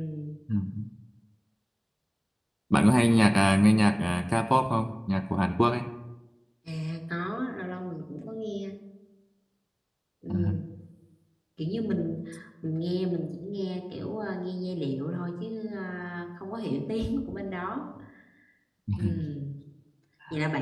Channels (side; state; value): both; identical; correlation 1.00